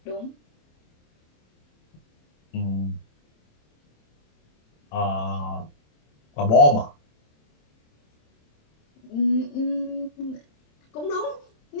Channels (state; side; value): late; right; 27 ms